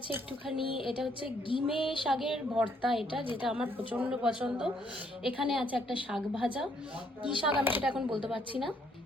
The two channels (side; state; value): both; normal; correlation 0.69